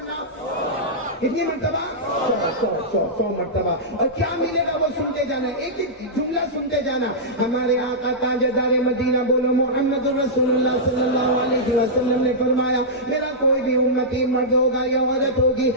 کتنی مرتبہ؟ 100 مرتبہ. اور کیا ملے گا وہ سنتے جانا، ایک ایک جملہ سنتے جانا. ہمارے آقا تاجدار مدینہ بولو محمد رسول اللہ صلی اللہ علیہ وسلم نے فرمایا میرا کوئی بھی امتی مرد ہوگا یا عورت ہوگی،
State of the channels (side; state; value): both; normal; correlation -0.12